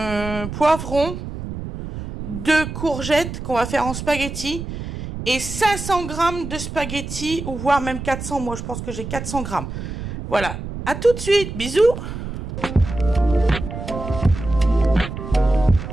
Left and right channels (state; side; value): noise; right; rumble, 8 dB below the sound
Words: poivrons, 2 courgettes qu'on va faire en spaghetti et 500 grammes de spaghetti ou voire même 400. Moi, je pense que j'ai 400 grammes. Voilà. À tout de suite. Bisous.